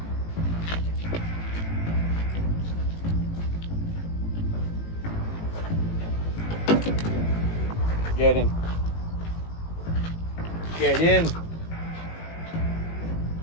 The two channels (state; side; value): late; right; 18 ms